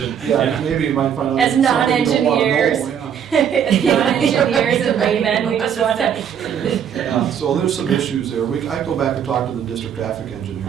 Yeah, maybe you might find out. As something you don't wanna know, non-engineers, yeah. as non-engineers and laymen, we just want to. Yeah, so there's some issues there. I go back and talk to the district traffic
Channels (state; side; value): quieter; left; 8.5 dB